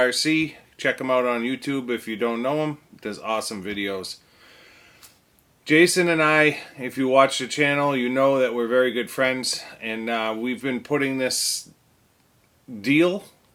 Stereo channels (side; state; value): both; identical; correlation 1.00